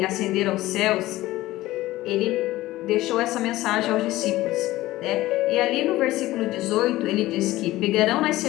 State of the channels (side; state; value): right; quieter; 17.0 dB